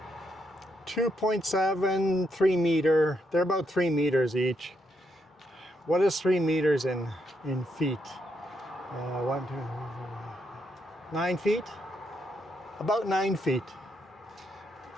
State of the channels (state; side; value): normal; both; correlation 0.78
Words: 3 meter. They're about 3 meters each. What is 3 meters in feet? 9 feet? About 9 feet.